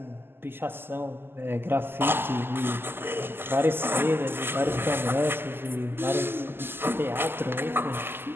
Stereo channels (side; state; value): left; late; 0.11 ms